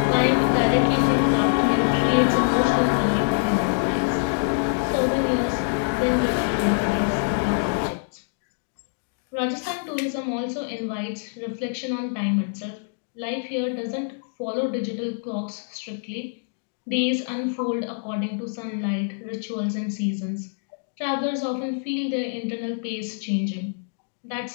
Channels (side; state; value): right; silent; digital silence